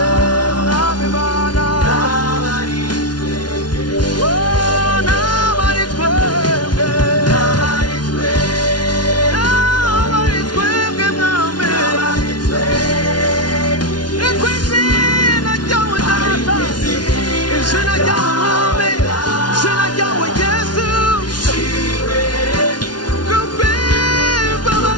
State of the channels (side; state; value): right; late; 0.70 ms